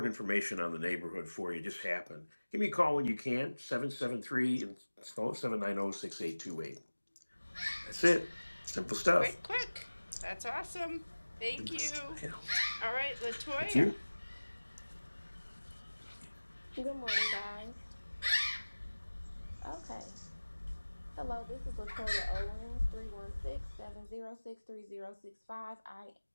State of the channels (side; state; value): both; inverted; correlation -1.00